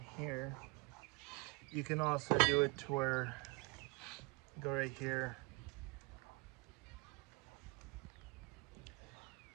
here. You can also do it to where, go right here,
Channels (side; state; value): left; quieter; 28.1 dB